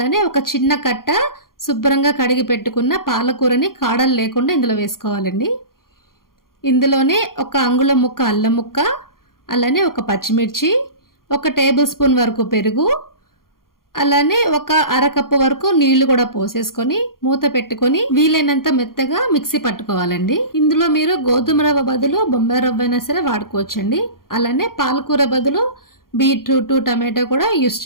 ఒక చిన్న కట్ట శుభ్రంగా కడిగి పెట్టుకున్న పాలకూరని కాడలు లేకుండా ఇందులో వేసుకోవాలండి. ఇందులోనే 1 అంగుళం ముక్క అల్లం ముక్క, అలానే 1 పచ్చిమిర్చి, 1 టేబుల్ స్పూన్ వరకు పెరుగు, అలానే 1 అరకప్పు వరకు నీళ్లు కూడా పోసేసుకొని మూత పెట్టుకొని వీలైనంత మెత్తగా మిక్సీ పట్టుకోవాలండి. ఇందులో మీరు గోధుమ రవ్వ బదులు బొంబాయి రవ్వ అయినా సరే వాడుకోవచ్చండి. అలానే పాలకూర బదులు బీట్రూట్, టమాటో కూడా యూస్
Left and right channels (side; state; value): right; late; 0.92 ms